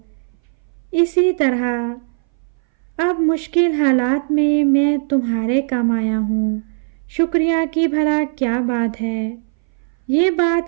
اسی طرح اب مشکل حالات میں میں تمہارے کام آیا ہوں۔ شکریہ کی بھلا کیا بات ہے۔ یہ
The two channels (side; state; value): left; silent; 61 dB below the other